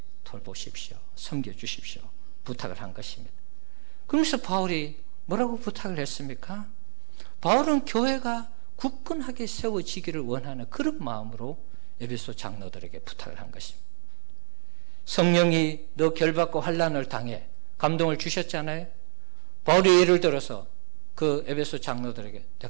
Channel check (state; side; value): silent; left; digital silence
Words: 돌보십시오. 섬겨주십시오. 부탁을 한 것입니다. 그러면서 바울이 뭐라고 부탁을 했습니까? 바울은 교회가 굳건하게 세워지기를 원하는 그런 마음으로 에베소 장로들에게 부탁을 한 것입니다. 성령이 너 결박과 환난을 당해 감동을 주셨잖아요. 바울이 예를 들어서 그 에베소 장로들에게